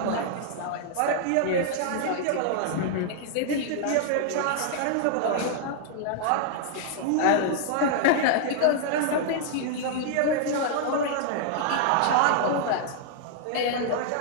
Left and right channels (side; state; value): both; different; correlation -0.01